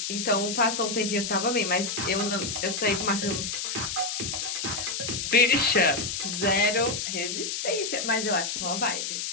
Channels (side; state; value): left; noise; hiss, 3 dB below the sound